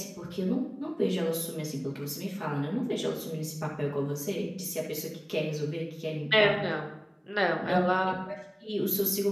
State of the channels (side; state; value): both; identical; correlation 1.00